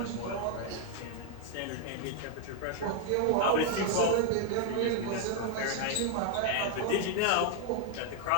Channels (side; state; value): both; different; correlation 0.00